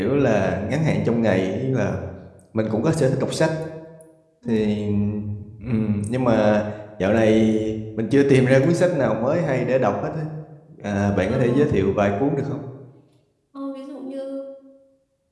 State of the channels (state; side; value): identical; both; correlation 1.00